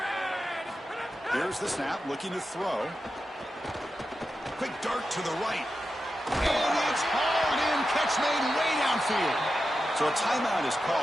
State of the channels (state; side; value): normal; both; correlation 0.90